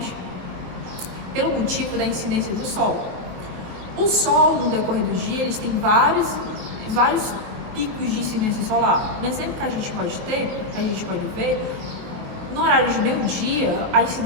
pelo motivo da incidência do sol. O sol, no decorrer do dia, eles têm vários picos de incidência solar. Um exemplo que a gente pode ver, no horário de meio-dia, a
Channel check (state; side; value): late; left; 23 ms